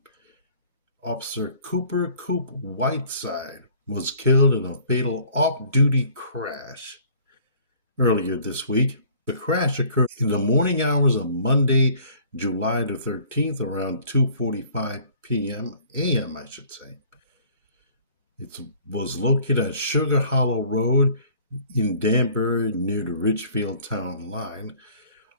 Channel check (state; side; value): inverted; both; correlation -0.54